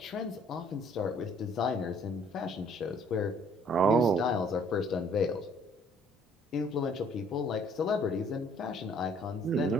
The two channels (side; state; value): both; normal; correlation 0.59